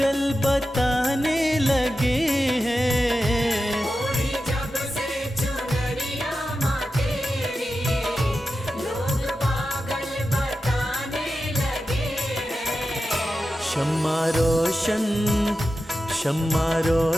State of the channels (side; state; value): both; normal; correlation 0.92